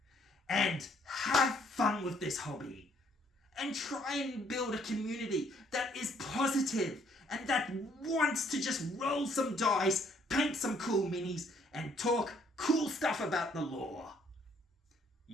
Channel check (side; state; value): both; normal; correlation 0.66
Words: And have fun with this hobby. And try and build a community that is positive and that wants to just roll some dice, paint some cool minis, and talk cool stuff about the lore.